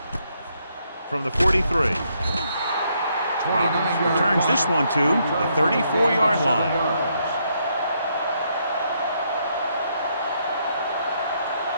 From the 43. Roberts returns this one to the 34-yard line.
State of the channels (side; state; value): both; inverted; correlation -0.74